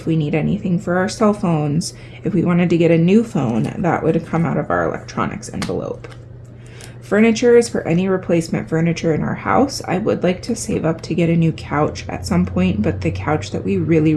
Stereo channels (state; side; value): identical; both; correlation 1.00